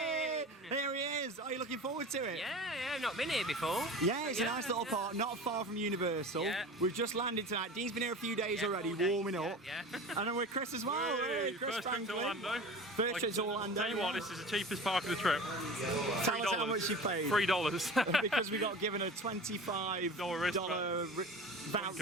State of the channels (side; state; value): both; normal; correlation 0.35